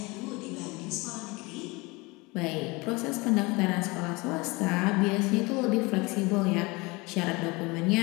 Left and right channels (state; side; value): quieter; right; 24.8 dB